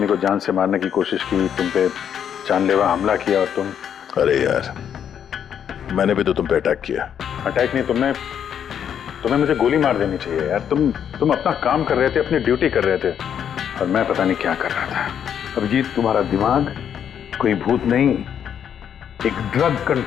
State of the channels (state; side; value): quieter; right; 8.7 dB